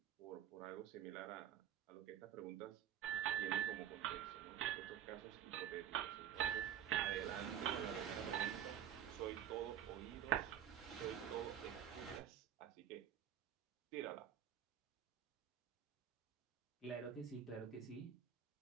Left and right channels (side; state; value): left; quieter; 9.9 dB